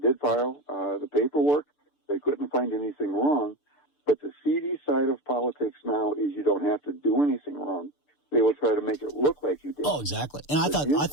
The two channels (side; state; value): right; late; 6.8 ms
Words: did file the paperwork. They couldn't find anything wrong. But the seedy side of politics now is you don't have to do anything wrong. They will try to make it look like you did. Oh, exactly. And I thought